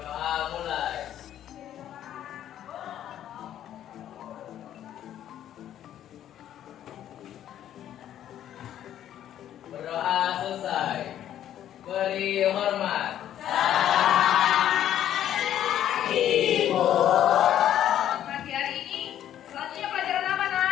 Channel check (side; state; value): right; quieter; 11.2 dB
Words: mulai. Berdoa selesai. Beri hormat. Pagi hari ini selanjutnya pelajaran apa,